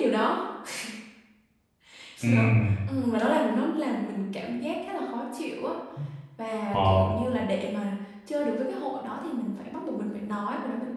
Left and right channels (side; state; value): both; identical; correlation 1.00